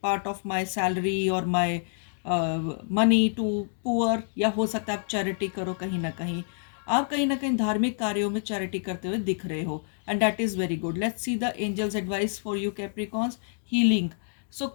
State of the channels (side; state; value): right; silent; digital silence